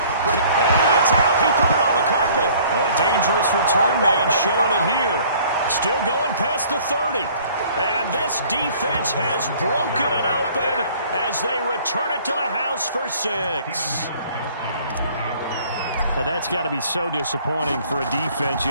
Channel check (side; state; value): both; inverted; correlation -0.54